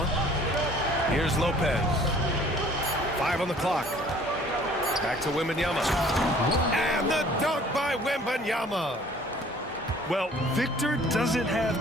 Here's Lopez. 5 on the clock. Back to Wembanyama. And the dunk by Wembanyama. Well, Victor doesn't have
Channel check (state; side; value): normal; both; correlation 0.53